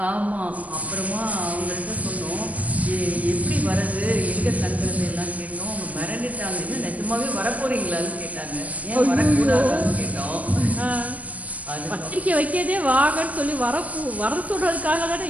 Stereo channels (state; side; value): late; left; 0.070 ms